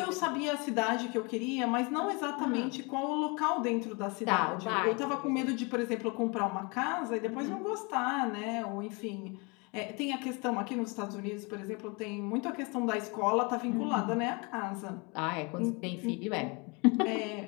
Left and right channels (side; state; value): right; quieter; 30.1 dB